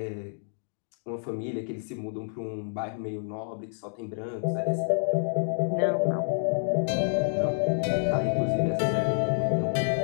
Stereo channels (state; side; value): silent; right; digital silence